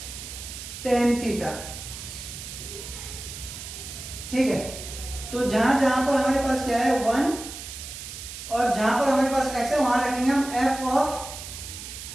tan थीटा, ठीक है। तो जहां जहां पर हमारे पास क्या है 1 और जहां पर हमारे पास x है वहां रखेंगे हम f ऑफ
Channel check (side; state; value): right; noise; hiss, 10 dB below the sound